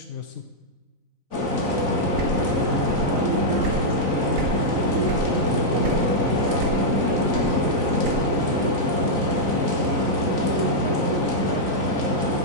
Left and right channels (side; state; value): left; late; 4.0 ms